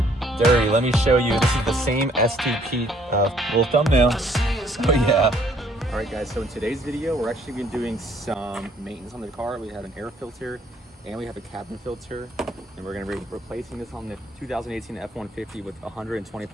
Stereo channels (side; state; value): both; normal; correlation 0.63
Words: dirty. Let me show you. This is the same STP little thumbnail. Oh yeah. All right guys, so in today's video, we're actually going to be doing some maintenance on the car. We have an air filter and we have a cabin filter, and we're going to be replacing this on the 2018 F150 with